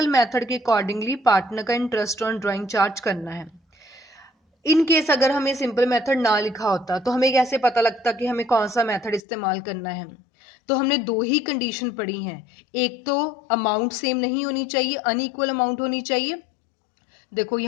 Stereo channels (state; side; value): drops out; right; at 9.2 s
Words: मेथड के अकॉर्डिंगली पार्टनर का इंटरेस्ट ऑन ड्राइंग चार्ज करना है। इन केस अगर हमें सिंपल मेथड ना लिखा होता तो हमें कैसे पता लगता कि हमें कौन सा मेथड इस्तेमाल करना है? तो हमने दो ही कंडीशन पढ़ी हैं, एक तो अमाउंट सेम नहीं होनी चाहिए, अनइक्वल अमाउंट होनी चाहिए। देखो